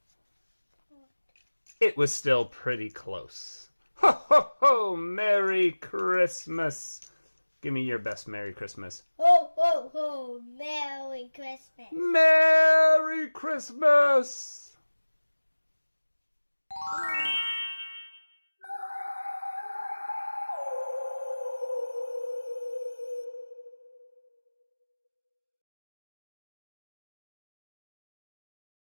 It was still pretty close. Ho, ho, ho! Merry Christmas! Give me your best Merry Christmas. Ho, ho, ho! Merry Christmas! Merry Christmas!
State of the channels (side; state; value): both; inverted; correlation -1.00